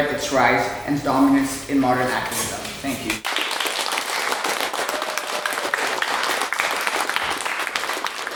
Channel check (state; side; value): identical; both; correlation 1.00